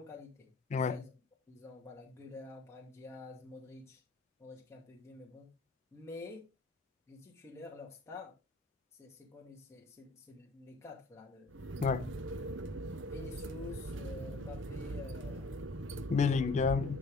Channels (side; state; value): right; quieter; 3.5 dB